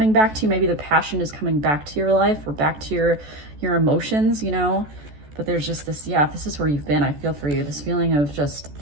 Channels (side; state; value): left; late; 14 ms